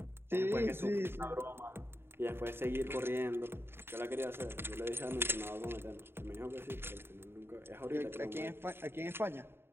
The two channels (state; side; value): late; left; 0.11 ms